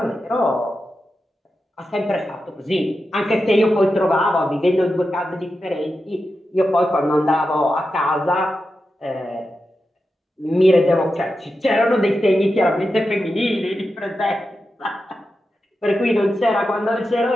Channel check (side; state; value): both; normal; correlation 0.90